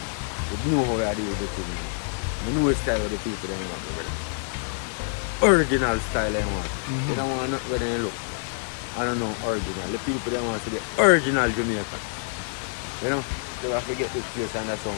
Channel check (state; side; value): silent; right; digital silence